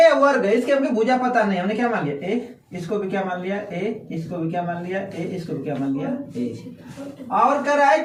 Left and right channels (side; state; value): both; identical; correlation 1.00